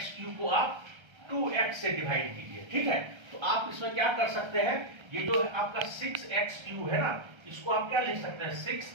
को आप 2x से डिवाइड कीजिए, ठीक है। तो आप इसमें क्या कर सकते हैं, ये जो आपका 6x³ है ना, इसको आप क्या लिख सकते हैं 6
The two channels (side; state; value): left; late; 1.3 ms